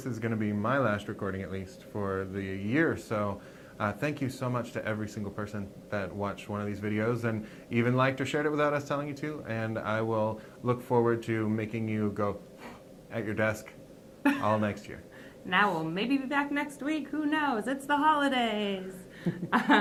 is going to be my last recording, at least, for the year. So thank you so much to every single person that watched one of these videos and even liked or shared it without us telling you to. And I will look forward to making you go at your desk all next year. Now we'll maybe be back next week. Who knows? It's the holidays.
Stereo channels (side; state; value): both; identical; correlation 1.00